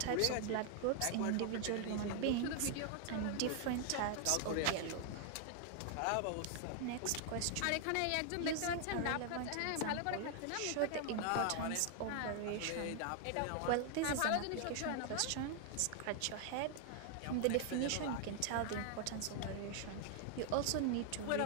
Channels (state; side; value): different; both; correlation 0.00